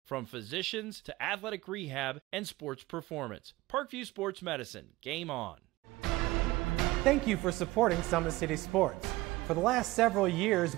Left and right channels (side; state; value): left; quieter; 19.1 dB